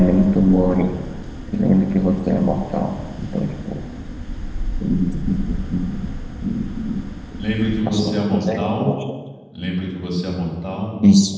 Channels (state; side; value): identical; both; correlation 1.00